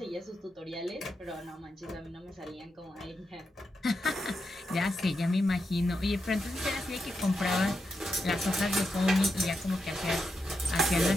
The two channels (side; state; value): both; normal; correlation 0.86